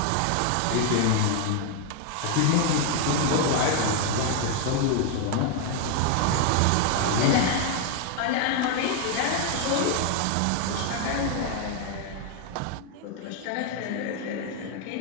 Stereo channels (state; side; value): different; both; correlation 0.01